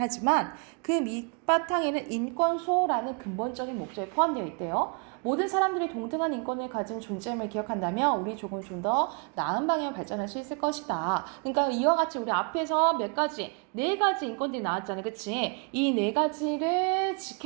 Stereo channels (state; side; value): quieter; left; 36.6 dB